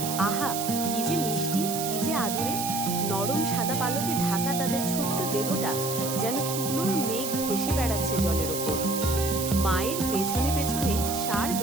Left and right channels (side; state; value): right; noise; hiss, 5 dB below the sound